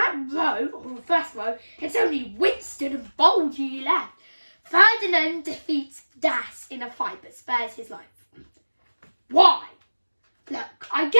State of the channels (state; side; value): inverted; both; correlation -1.00